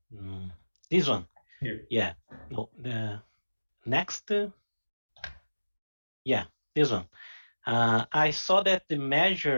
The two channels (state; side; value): inverted; both; correlation -1.00